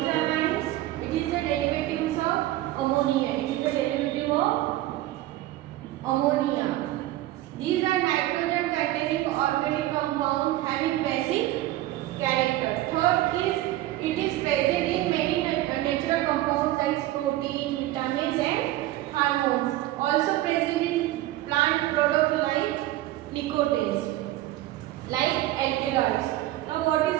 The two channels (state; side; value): quieter; left; 15.7 dB